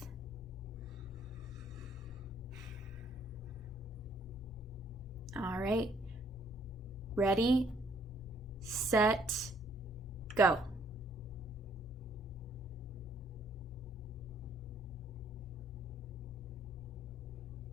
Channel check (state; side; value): normal; both; correlation 0.65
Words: All right, ready, set, go.